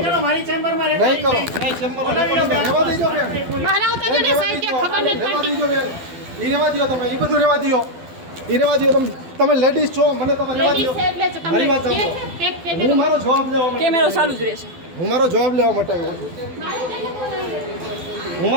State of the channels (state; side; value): late; left; 12 ms